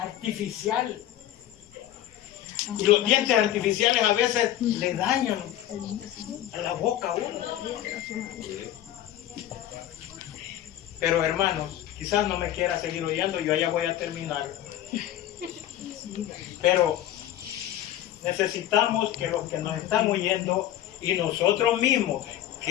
Y los dientes artificiales a veces le dañan a la boca a uno. Pero hermanos, quizás no me quiera seguir oyendo, yo ya voy a terminar. Pero necesitamos que los que nos están oyendo y nosotros mismos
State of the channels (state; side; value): quieter; right; 12.8 dB